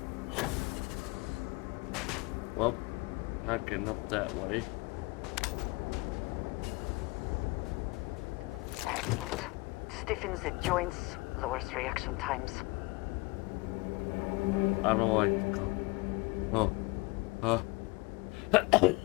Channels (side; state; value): right; quieter; 25.0 dB